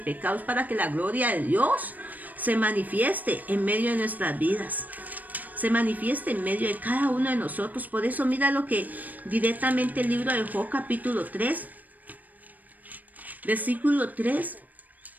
pecado, es para que la gloria de Dios se manifieste en medio de nuestras vidas. Se manifieste en medio de cada uno de nosotros. Por eso mira lo que directamente el libro de Job capítulo 3, versículo 3.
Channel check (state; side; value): late; left; 0.081 ms